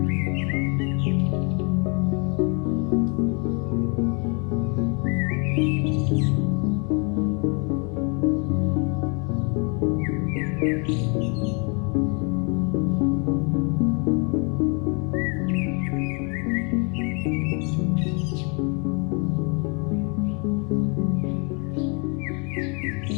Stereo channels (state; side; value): quieter; right; 34.2 dB